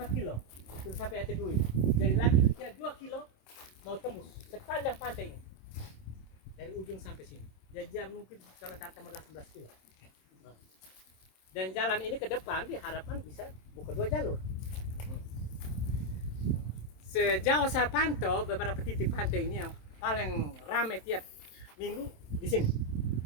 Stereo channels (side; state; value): right; late; 27 ms